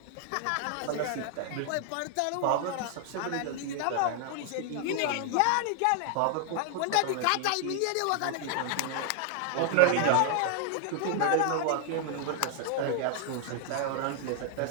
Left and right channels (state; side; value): different; both; correlation 0.00